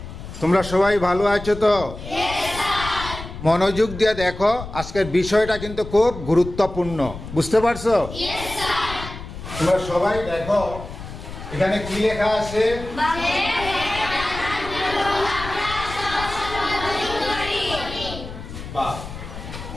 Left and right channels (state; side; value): noise; left; rumble, 11 dB below the sound